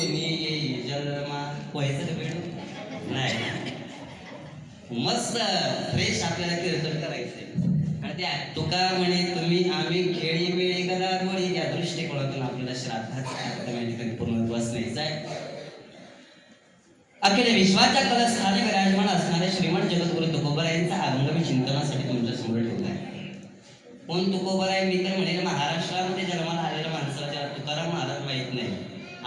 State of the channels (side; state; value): both; identical; correlation 1.00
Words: जन्मा. व्हायचं का बेडूक? नाही. मस्त फ्रेश आपल्याला कीर्तन करायचंय. आणि त्या तुका म्हणे तुम्ही आम्ही खेळी बेळी गदारोळी या दृष्टिकोनातून आपल्याला श्राद्धाचा पूर्ण बसण्याचा आहे. अखिल विश्वाच्या कलस्थानी विराजमान असणारे श्रीमंत जगद्गुरु तुकोबरायांचा अभंग मी चिंतनासाठी तुमच्या समोर ठेवला आहे. कोण तुकोबराय? मी तर म्हणेल महाराष्ट्रामध्ये जन्माला आलेल्या माणसाला ज्याला तुकाराम महाराज माहीत नाही